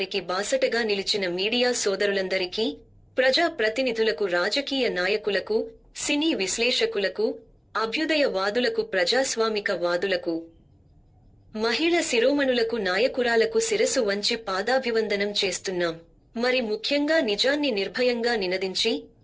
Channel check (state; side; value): identical; both; correlation 1.00